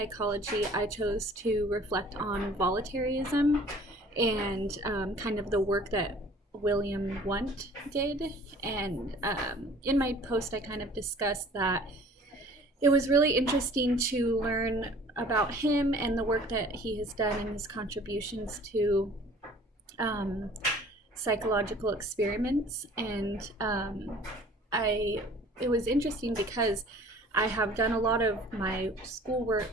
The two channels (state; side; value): normal; both; correlation 0.50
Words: I chose to reflect on voluntarism and kind of the work that William Wundt did. And in my post, I kind of discussed that it was really interesting to learn about him and the work that he has done and his contributions to psychological experiments. And it was interesting because I have done a lot of my